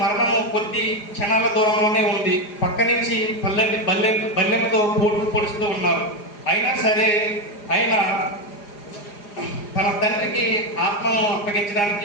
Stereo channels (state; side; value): late; right; 4.9 ms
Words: మరణము కొద్ది క్షణాల దూరంలోనే ఉంది. పక్క నుంచి బల్లెంతో పొడుస్తూ ఉన్నారు. అయినా సరే ఆయన తన తండ్రికి ఆత్మను